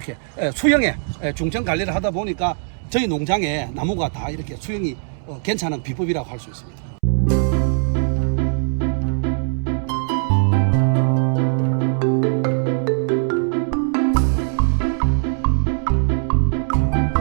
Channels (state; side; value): silent; left; 65 dB below the other